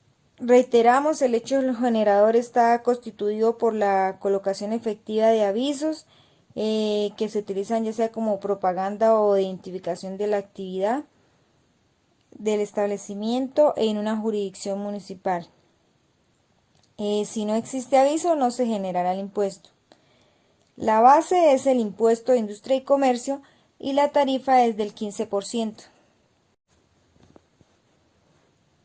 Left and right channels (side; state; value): both; identical; correlation 1.00